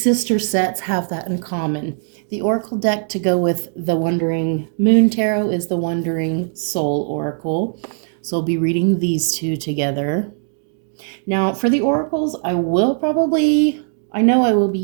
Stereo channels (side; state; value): left; silent; digital silence